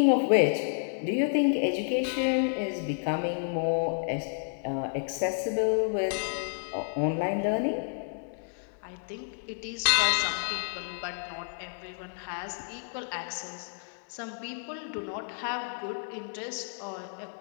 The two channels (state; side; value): silent; right; digital silence